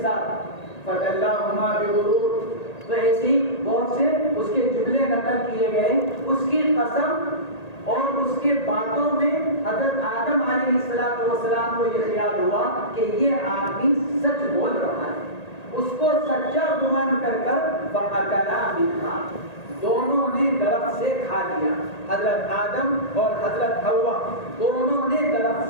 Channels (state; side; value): late; right; 1.8 ms